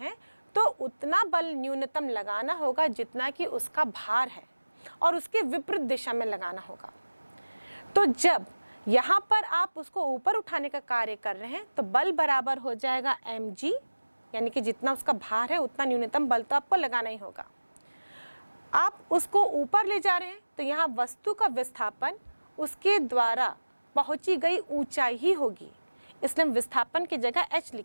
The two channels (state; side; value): inverted; both; correlation -1.00